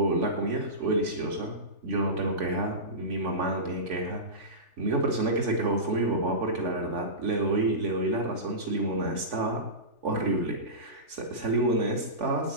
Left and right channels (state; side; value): late; left; 3.4 ms